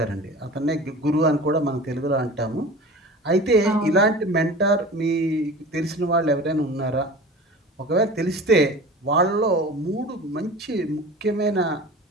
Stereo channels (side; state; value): both; normal; correlation 0.37